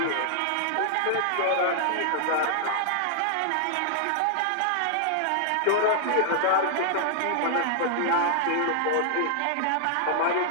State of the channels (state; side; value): different; both; correlation -0.01